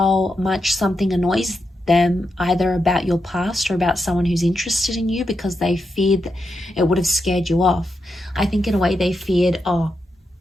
much something annoys them, either about your past or about someone who's interested in you, because they feared that it would have scared you off. I think in a way they feared, oh,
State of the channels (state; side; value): normal; both; correlation 0.85